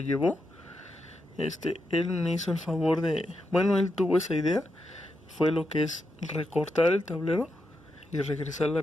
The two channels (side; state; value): both; normal; correlation 0.85